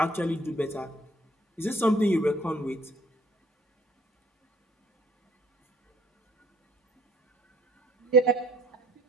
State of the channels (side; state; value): both; normal; correlation 0.59